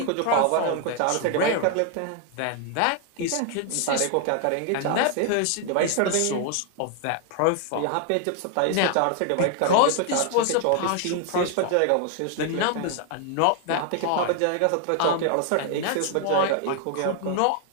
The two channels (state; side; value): different; both; correlation 0.00